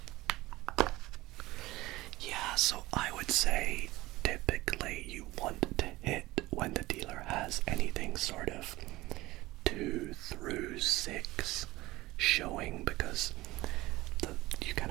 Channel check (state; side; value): quieter; left; 18.8 dB